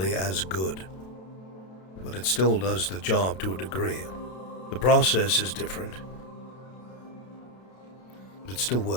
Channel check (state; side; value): late; right; 32 ms